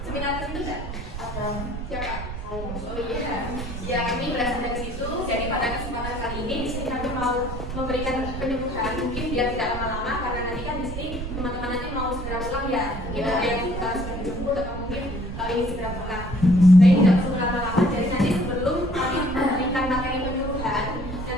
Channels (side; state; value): right; noise; rumble, 7 dB below the sound